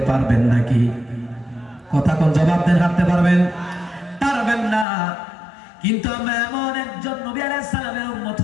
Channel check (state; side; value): drops out; right; at 4.9 s